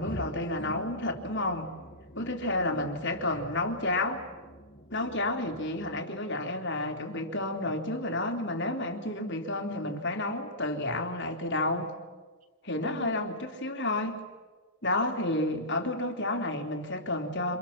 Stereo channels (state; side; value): normal; both; correlation -0.17